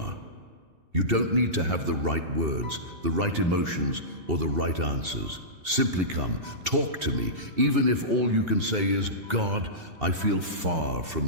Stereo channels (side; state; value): left; late; 2.7 ms